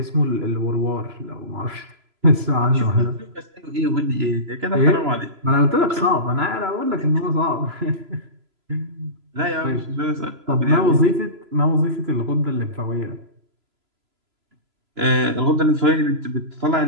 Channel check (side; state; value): left; late; 3.0 ms